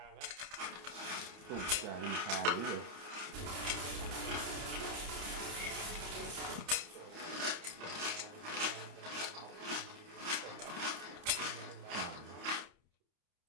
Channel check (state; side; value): late; left; 30 ms